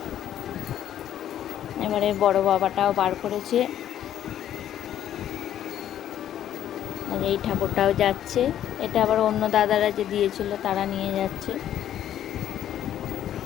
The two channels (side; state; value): right; quieter; 11.0 dB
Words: এবারে বড় বাবাটাও বার করেছে, আর এই ঠাকুরটাও যাচ্ছে। এটা আবার অন্য দাদারা যে দিয়েছিল তারা নিয়ে যাচ্ছে।